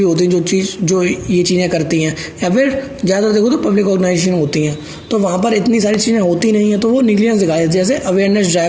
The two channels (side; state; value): both; identical; correlation 1.00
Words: होती हैं जो ये चीज़ें करती हैं, या फिर ज़्यादा देखो तो पब्लिक ऑर्गेनाइजेशन होती हैं, तो वहाँ पर इतनी सारी चीज़ें होती नहीं हैं, तो वो निग्लिजेंस दिखाए। जैसे अवेयरनेस